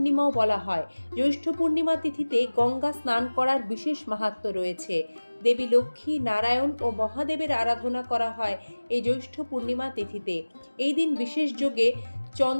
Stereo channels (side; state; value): both; inverted; correlation -1.00